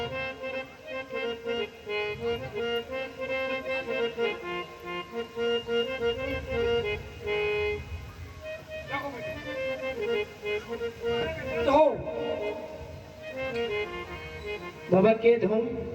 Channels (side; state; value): both; identical; correlation 1.00